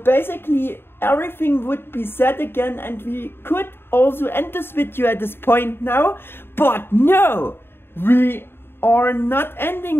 everything would be said again, and we could also end this video at this point now. But no, we are not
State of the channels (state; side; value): late; right; 0.11 ms